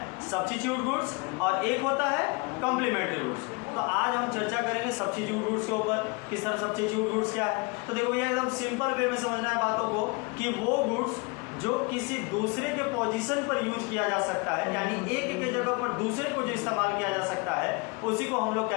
सब्स्टिट्यूट गुड्स और एक होता है कॉम्प्लीमेंट्री गुड्स। तो आज हम चर्चा करेंगे सब्स्टिट्यूट गुड्स के ऊपर, किस तरह सब्स्टिट्यूट गुड्स क्या है। तो देखो ये एकदम सिंपल वे में समझना है बातों को कि वो गुड्स जो किसी दूसरे के पोजीशन पर यूज किया जा सकता है, यानी एक के जगह पर दूसरे को जो इस्तेमाल किया जा सकता है, उसी को हम लोग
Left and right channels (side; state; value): right; quieter; 28.8 dB